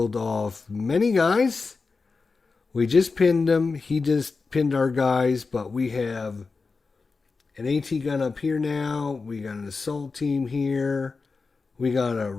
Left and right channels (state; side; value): quieter; right; 4.3 dB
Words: off many guys. We just pinned him. He just pinned our guys, but we have an AT gun up here now. We got an assault team here. We got a